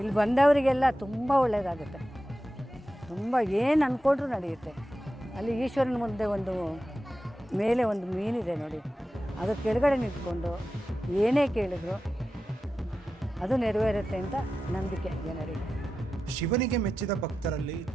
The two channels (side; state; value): both; normal; correlation 0.92